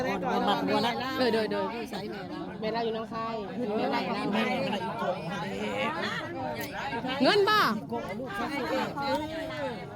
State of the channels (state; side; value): identical; both; correlation 1.00